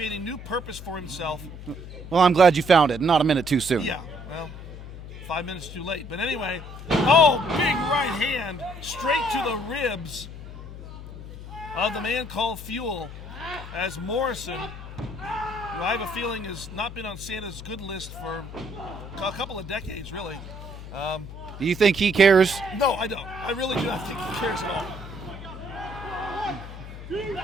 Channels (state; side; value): noise; left; hum, 12 dB below the sound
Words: a new purpose for himself. Well, I'm glad you found it. Not a minute too soon. Yeah, well, 5 minutes too late. But anyway, big right hand straight to the ribs of the man called Fuel, as Morrison, who I have a feeling has not been on Santa's good list for a couple of decades, really. Do you think he cares? No, I don't. I really do not think he cares at